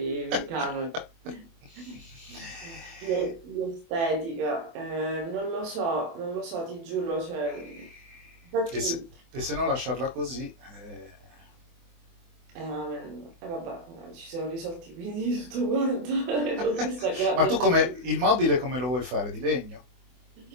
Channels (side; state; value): left; late; 24 ms